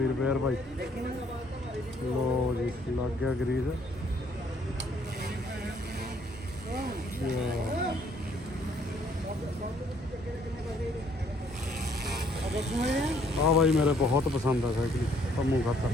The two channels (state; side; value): normal; both; correlation 0.65